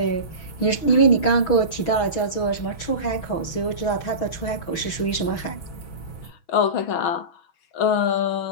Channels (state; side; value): late; right; 6.2 ms